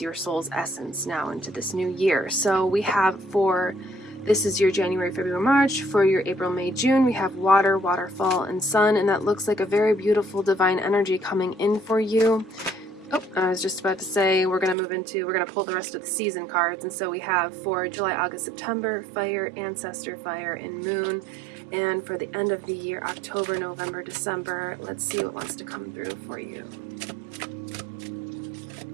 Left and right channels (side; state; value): left; drops out; at 14.8 s